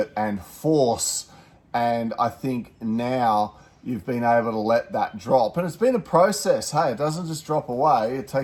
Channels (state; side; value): identical; both; correlation 1.00